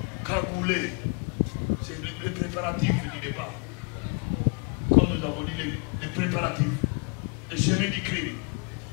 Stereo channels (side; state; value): right; quieter; 35.2 dB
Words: Cagoulé, c'est le préparatif du départ. Comme nous avons dit, les préparatifs, le chemin du crime.